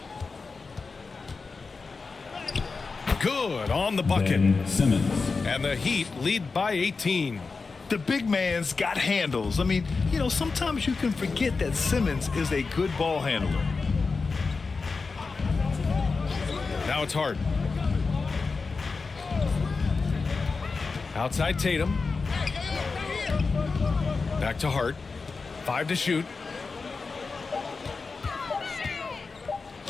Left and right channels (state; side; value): quieter; right; 4.4 dB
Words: Good on the bucket. Simmons. And the Heat lead by 18. The big man's got handles. I mean, you know, sometimes you can forget that Simmons is a good ball handler. Now it's Hart. Outside Tatum. Back to Hart. 5 to shoot.